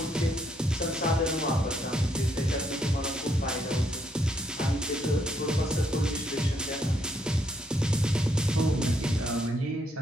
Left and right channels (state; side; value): normal; both; correlation 0.74